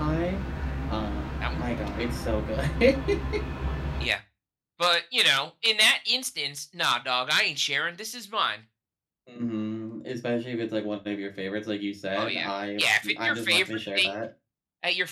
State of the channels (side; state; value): both; identical; correlation 1.00